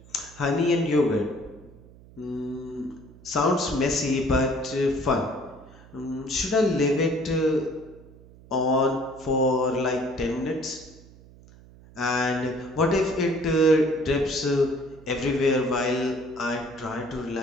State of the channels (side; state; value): right; noise; hum, 22 dB below the sound